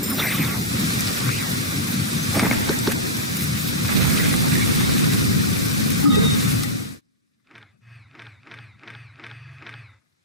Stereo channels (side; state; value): both; normal; correlation -0.10